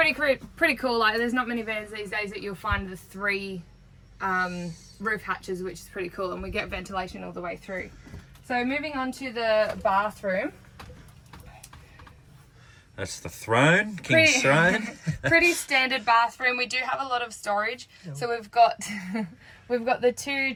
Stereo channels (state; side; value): identical; both; correlation 1.00